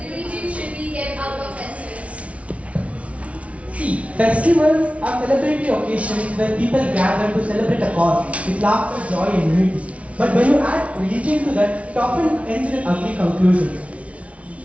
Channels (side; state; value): left; late; 0.064 ms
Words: religion should be kept out of festivals. See, festivals are celebratory occasions where people gather to celebrate a cause with laughter, joy, and unity. But when you add religion to that, it often ends in ugly conclusions.